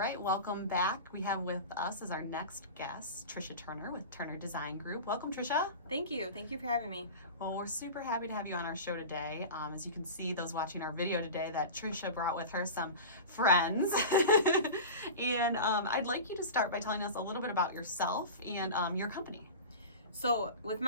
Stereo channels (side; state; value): both; inverted; correlation -0.30